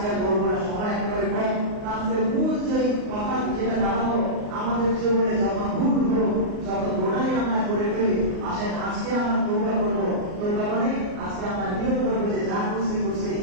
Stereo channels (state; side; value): late; left; 38 ms